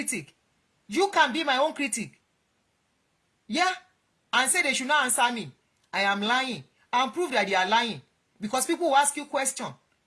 You can be my own critic. Yeah. And say they should not answer me. I am lying. And prove that they are lying. Because people will ask you questions.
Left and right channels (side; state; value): both; identical; correlation 1.00